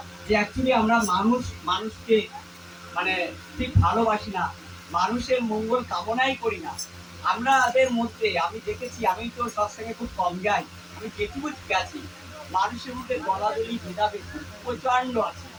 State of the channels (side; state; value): both; identical; correlation 1.00